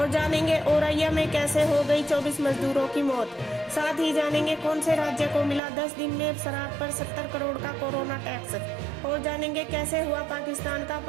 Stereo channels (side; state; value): left; drops out; at 5.6 s